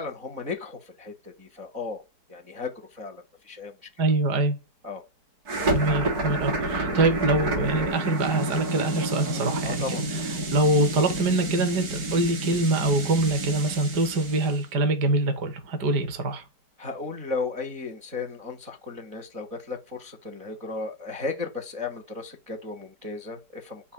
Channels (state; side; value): late; left; 4.6 ms